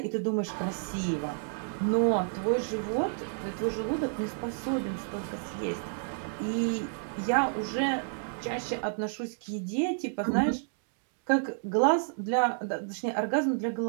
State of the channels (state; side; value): silent; left; digital silence